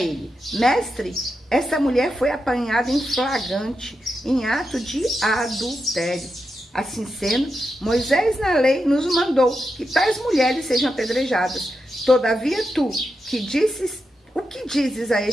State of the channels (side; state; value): both; normal; correlation 0.87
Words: mestre, essa mulher foi apanhada em flagrante, em ato de adultério. Assim sendo, Moisés na lei nos mandou que tais mulheres sejam apedrejadas. Todavia tu, o que dizes a